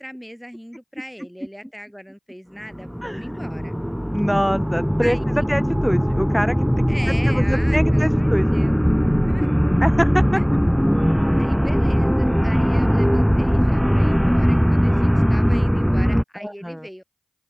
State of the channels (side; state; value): both; identical; correlation 1.00